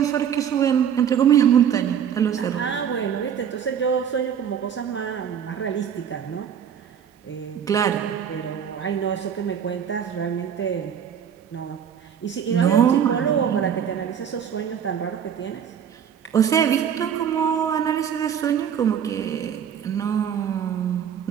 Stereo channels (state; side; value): quieter; left; 8.4 dB